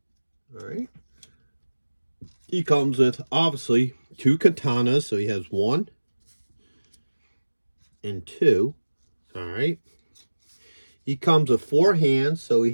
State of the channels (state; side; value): inverted; both; correlation -1.00